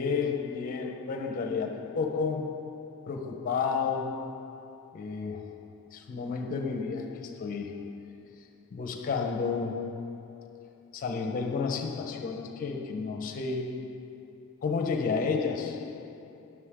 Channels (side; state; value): right; quieter; 4.7 dB